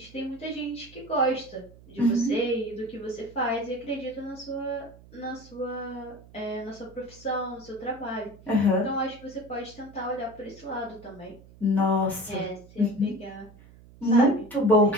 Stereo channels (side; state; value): right; noise; hum, 22 dB below the sound